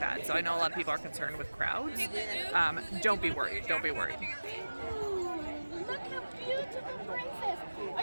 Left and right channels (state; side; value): inverted; both; correlation -1.00